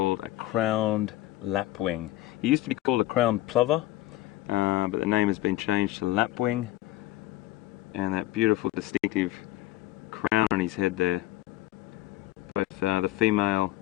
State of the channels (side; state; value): right; quieter; 15.8 dB